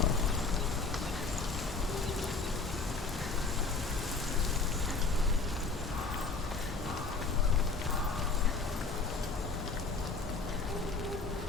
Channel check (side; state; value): right; quieter; 4.1 dB